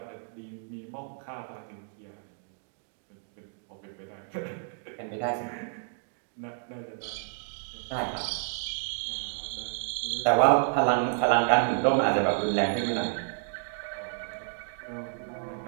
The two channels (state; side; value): silent; left; digital silence